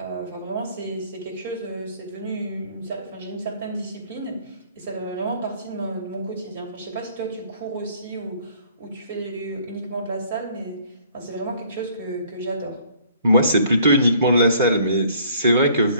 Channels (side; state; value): both; inverted; correlation -0.58